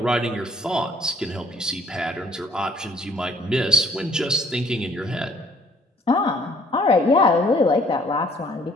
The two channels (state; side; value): normal; both; correlation 0.60